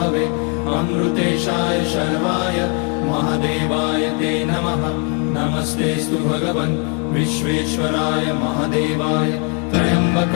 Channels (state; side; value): quieter; right; 37.6 dB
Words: अमृतेशाय शर्वाय महादेवाय ते नमः। नमस्तेऽस्तु भगवन् विश्वेश्वराय महादेवाय